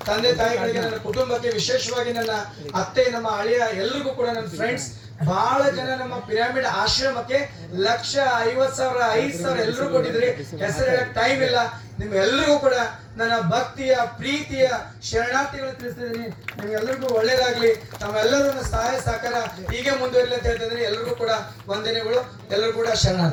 ತಂದೆ ತಾಯಿಗಳಿಗೆ, ನನ್ನ ಕುಟುಂಬಕ್ಕೆ, ವಿಶೇಷವಾಗಿ ನನ್ನ ಅತ್ತೆ, ನಮ್ಮ ಅಳಿಯ, ಎಲ್ರಿಗೂ ಕೂಡ ನನ್ನ ಫ್ರೆಂಡ್ಸ್ ಬಹಳ ಜನ ನಮ್ಮ ಪಿರಾಮಿಡ್ ಆಶ್ರಮಕ್ಕೆ 1,50,000 5,000 ಎಲ್ಲರೂ ಕೊಟ್ಟಿದ್ರಿ. ಹೆಸರು ಹೇಳಕ್ ಟೈಮ್ ಇಲ್ಲ. ನಿಮ್ ಎಲ್ರಿಗೂ ಕೂಡ ನನ್ನ ಭಕ್ತಿಯ ಪ್ರೀತಿಯ ಶರಣಾರ್ಥಿಗಳು ತಿಳಿಸ್ತಿದ್ದೀನಿ. ನಿಮ್ಗೆಲ್ಲರಿಗೂ ಒಳ್ಳೇದಾಗ್ಲಿ. ತಮ್ಮೆಲ್ಲರೂ ನನ್ನ ಸಹಾಯ ಸಹಕಾರ ಹೀಗೆ ಮುಂದುವರಿಲಿ ಅಂತ ಹೇಳ್ತಿದ್ದೀನಿ. ಎಲ್ರಿಗೂ ಕೂಡ ವಂದನೆಗಳು. ಎಲ್ಲರೂ ಕೂಡ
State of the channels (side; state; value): both; identical; correlation 1.00